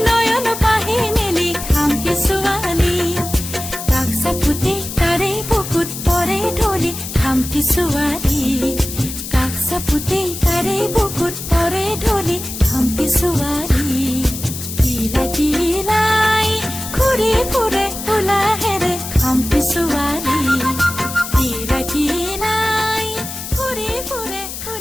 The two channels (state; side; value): noise; left; hiss, 8 dB below the sound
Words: নয়ন পাহি মেলি খামটি ছোৱালী। কাষ চাপোতে তাৰে বুকুত পৰে ঢলি খামটি ছোৱালী, কাষ চাপোতে তাৰে বুকুত